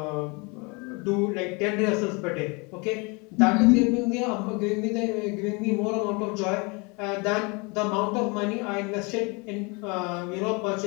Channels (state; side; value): quieter; right; 29.6 dB